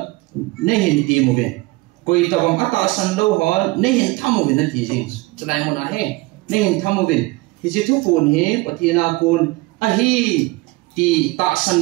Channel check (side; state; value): left; quieter; 22.4 dB